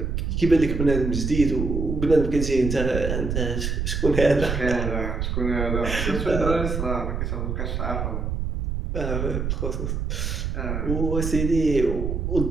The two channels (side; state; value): right; noise; rumble, 2 dB below the sound